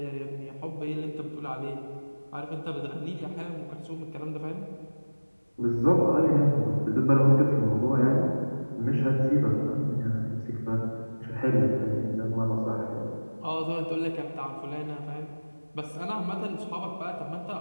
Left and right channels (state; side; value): inverted; both; correlation -1.00